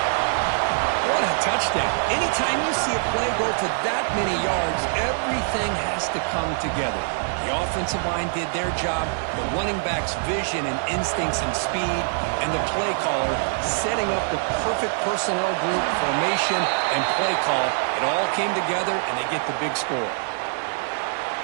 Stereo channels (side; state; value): left; silent; 63 dB below the other